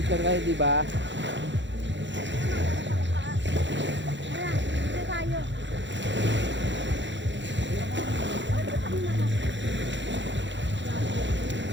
kayo, di ba?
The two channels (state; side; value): late; left; 0.53 ms